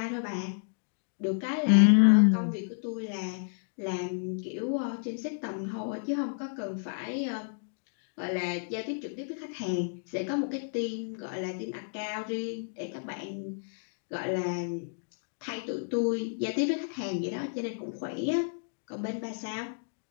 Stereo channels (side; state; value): right; silent; digital silence